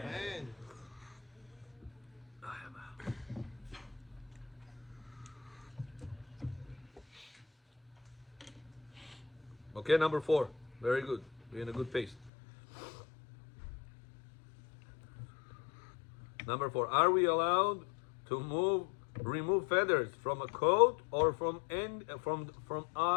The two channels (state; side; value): drops out; right; at 12.3 s